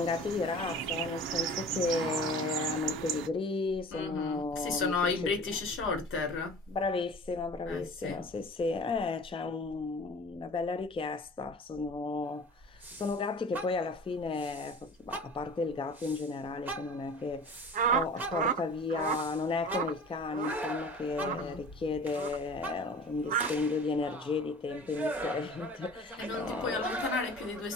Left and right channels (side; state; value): both; normal; correlation 0.42